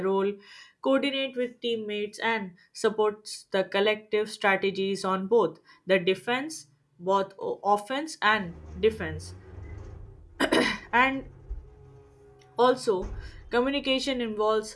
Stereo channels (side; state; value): both; identical; correlation 1.00